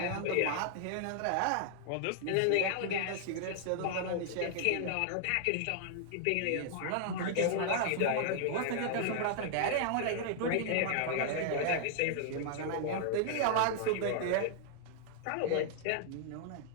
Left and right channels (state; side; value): different; both; correlation -0.01